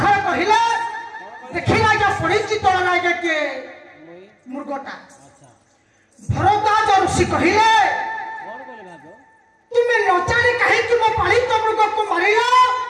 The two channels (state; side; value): identical; both; correlation 1.00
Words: कहिले देखिला जे पड़िची तोड़ लागे के मुर्गटा भरद्वाज ऋषि कहिले तुम्हें न जाने कहे कि मैं पालित मुर्ग को मारिला